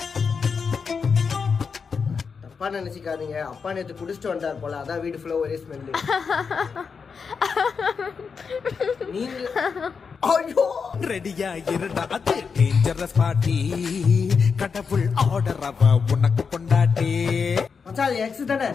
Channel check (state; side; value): quieter; right; 5.6 dB